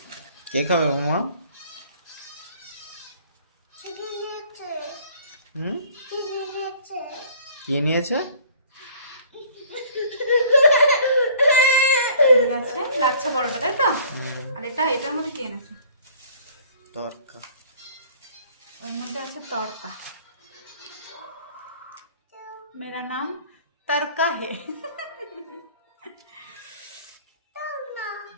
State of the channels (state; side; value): inverted; both; correlation -0.53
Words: কে খাবে মামা? হুম, কে নিয়েছে? আছে লাচ্ছা পরোটা, তাই তো? আর এটার মধ্যে কি এনেছে? তরকা। ওর মধ্যে আছে তড়কা। মেরা নাম তড়কা হে।